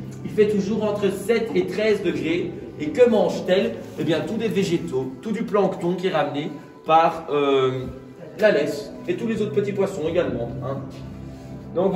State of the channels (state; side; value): identical; both; correlation 1.00